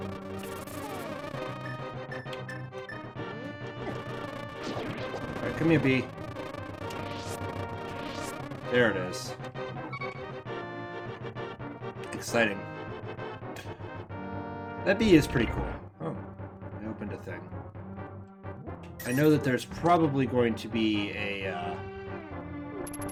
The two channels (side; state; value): both; identical; correlation 1.00